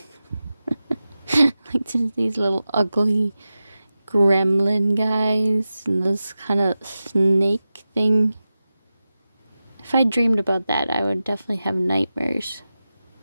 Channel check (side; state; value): both; inverted; correlation -0.93